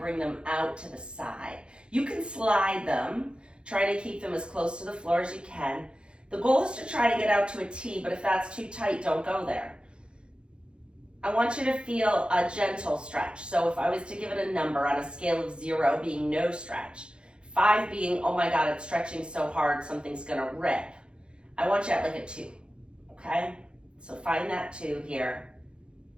bring them out to the side. You can slide them, try to keep them as close to the floor as you can. The goal is to try to get out to a T, but if that's too tight, don't go there. I want you to feel a gentle stretch. So if I was to give it a number on a scale of 0 being no stretch, 5 being, oh my God, it's stretching so hard, something's gonna rip. I want you at like a 2, okay? So find that 2 here,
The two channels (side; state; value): left; late; 0.054 ms